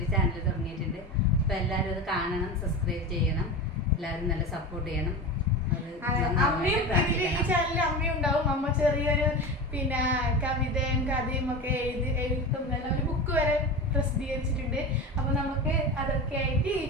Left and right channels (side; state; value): both; normal; correlation 0.26